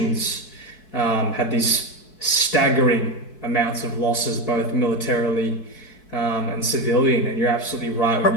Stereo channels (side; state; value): right; late; 4.6 ms